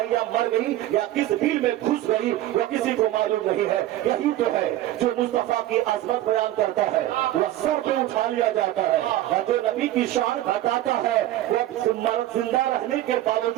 या मर गई या किस बिल में घुस गई या किसी को मालूम नहीं है। यही तो है जो मुस्तफा की अजमत बयान करता है। वह सर पे उठा उठा लिया जाता है, और जो नबी की शान घटाता है वो जिंदा रहने के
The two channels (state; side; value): quieter; left; 14.3 dB